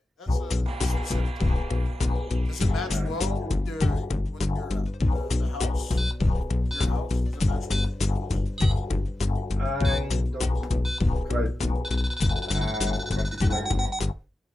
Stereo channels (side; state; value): both; normal; correlation 0.94